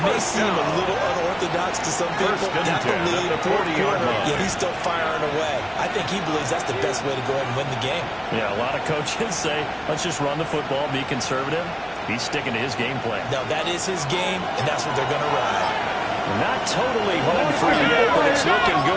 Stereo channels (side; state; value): both; identical; correlation 1.00